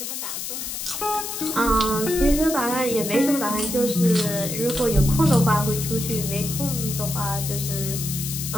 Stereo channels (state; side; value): noise; left; hiss, 5 dB below the sound